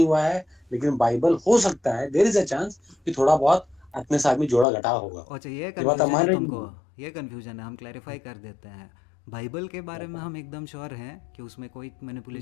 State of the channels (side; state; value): right; drops out; at 4.7 s